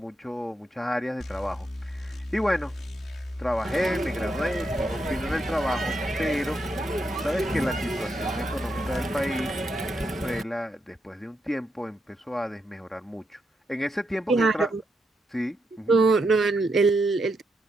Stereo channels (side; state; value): both; normal; correlation 0.82